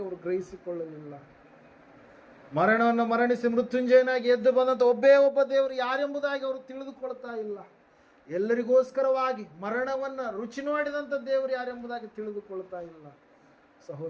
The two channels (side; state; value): both; identical; correlation 1.00